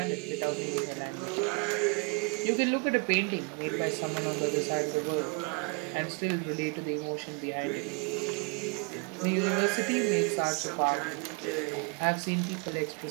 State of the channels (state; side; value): quieter; left; 32.2 dB